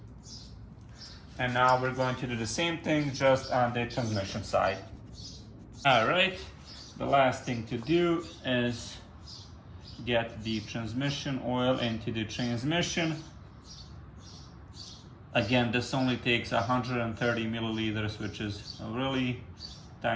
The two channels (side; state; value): both; identical; correlation 1.00